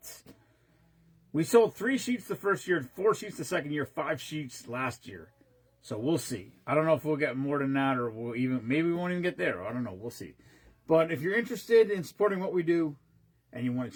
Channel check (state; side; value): identical; both; correlation 1.00